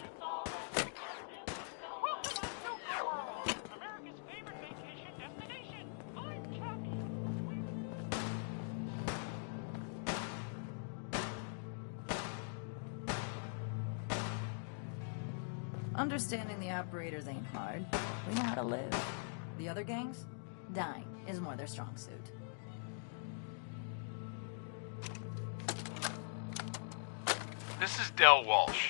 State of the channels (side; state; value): right; silent; digital silence